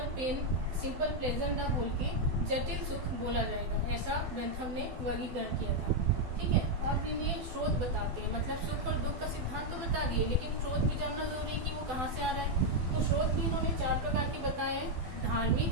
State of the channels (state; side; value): late; left; 12 ms